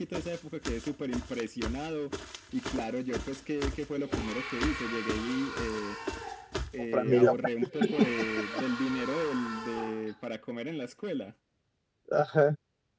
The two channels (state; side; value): identical; both; correlation 1.00